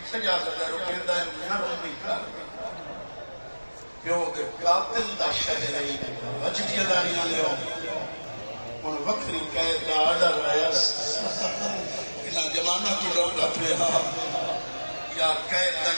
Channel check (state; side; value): inverted; both; correlation -1.00